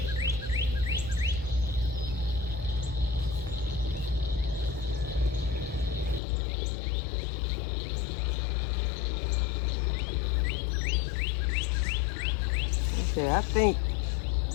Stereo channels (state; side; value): drops out; right; at 6.2 s